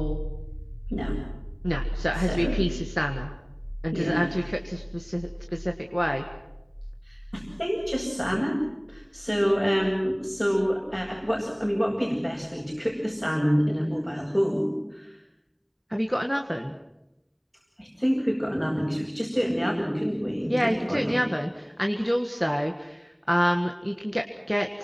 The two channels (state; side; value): identical; both; correlation 1.00